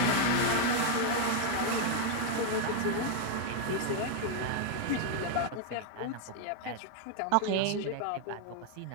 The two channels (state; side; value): different; both; correlation 0.00